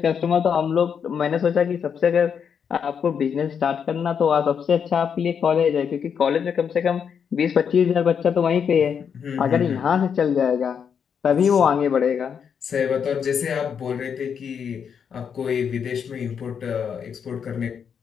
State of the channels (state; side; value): quieter; right; 7.2 dB